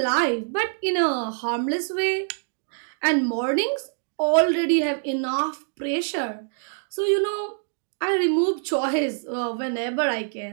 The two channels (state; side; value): silent; left; digital silence